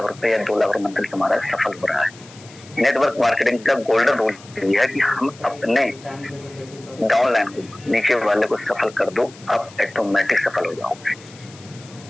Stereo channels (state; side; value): noise; left; hiss, 22 dB below the sound